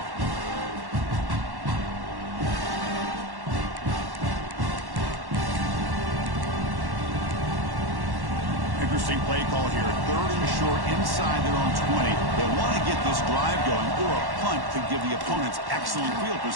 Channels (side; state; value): left; late; 1.1 ms